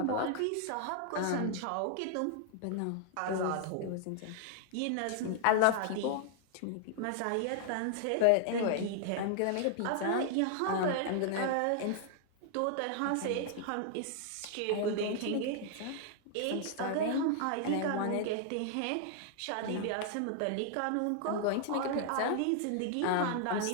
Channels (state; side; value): different; both; correlation -0.01